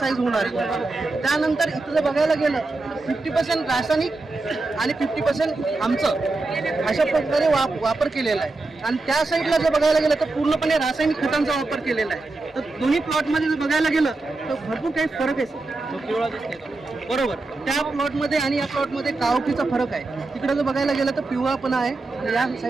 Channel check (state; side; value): quieter; left; 3.3 dB